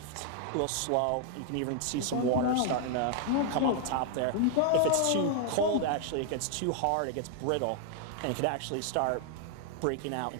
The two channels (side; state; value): both; different; correlation 0.00